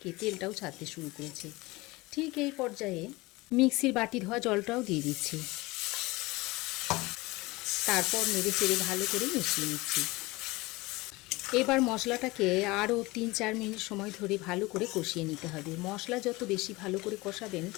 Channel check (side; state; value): right; quieter; 21.9 dB